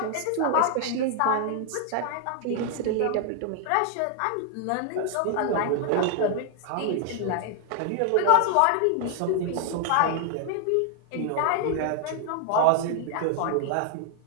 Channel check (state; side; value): different; both; correlation 0.00